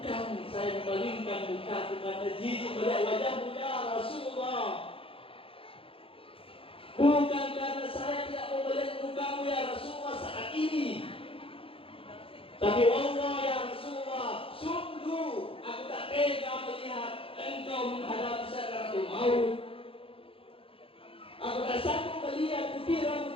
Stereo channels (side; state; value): right; late; 0.27 ms